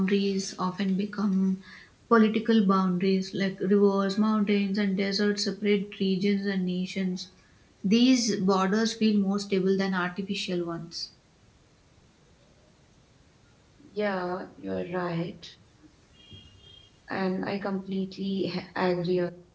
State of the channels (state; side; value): identical; both; correlation 1.00